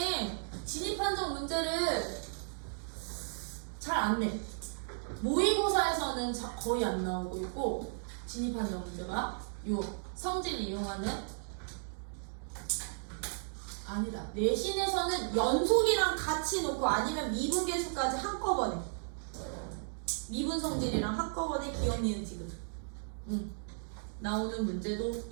진입한정 문제를 잘 안 내. 모의고사에서는 거의 안 나오고 있고 진입한정 문제가 요 성질 이용하는 아니다. 내신에서는 연속이랑 같이 놓고 아니면 미분계수까지 한꺼번에 미분 성질이랑 한꺼번에 기억 니은 지금 나오는 문제도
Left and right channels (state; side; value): silent; left; digital silence